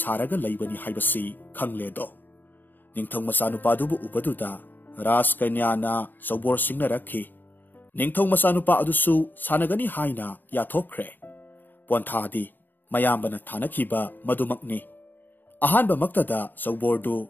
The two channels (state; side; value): late; right; 0.091 ms